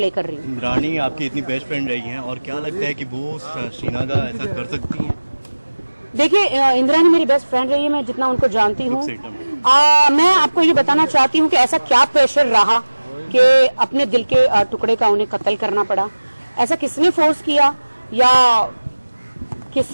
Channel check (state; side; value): inverted; both; correlation -1.00